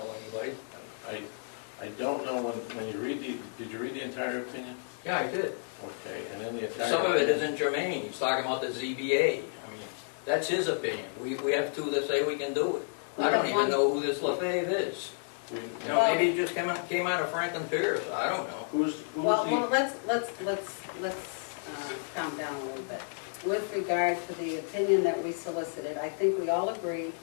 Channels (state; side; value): silent; right; digital silence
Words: anybody. I don't know when you read did you read the entire opinion? Yeah, I did. Okay, and then the entire Some of it isn't germane. He's talking about the ZBA. I mean, that's his opinion. We have two that say we can do it. I don't even know who this LaFave is. Maybe he just came out of Franklin Pierce. I don't know. Well, let's calm down a little bit. With regard to the opinion that we solicited, I think we all agreed